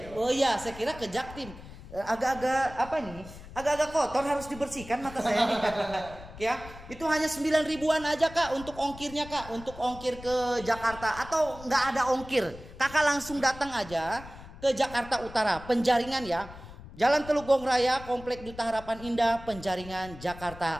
Oh iya, saya kira ke Jaktim. Agak-agak apa nih? Agak-agak kotor, harus dibersihkan mata saya nih. Ya, itu hanya 9.000-an aja kak untuk ongkirnya kak, untuk ongkir ke Jakarta atau nggak ada ongkir, kakak langsung datang aja ke Jakarta Utara, Penjaringan ya, Jalan Teluk Gong Raya, Komplek Duta Harapan Indah, Penjaringan,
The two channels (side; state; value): left; noise; rumble, 16 dB below the sound